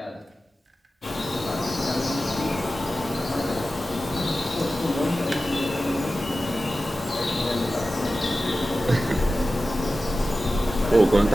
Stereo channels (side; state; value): both; normal; correlation 0.94